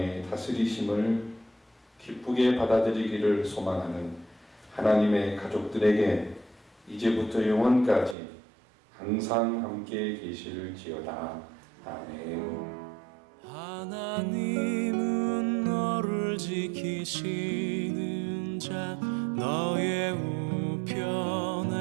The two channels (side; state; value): left; drops out; at 8.2 s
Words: 다스리심을 기쁘게 받아들이기를 소망하는 하나님의 가족들에게 이제부터 영원까지 항상 함께 계실지어다. 아멘. 하나님은 너를 지키시는 자, 너의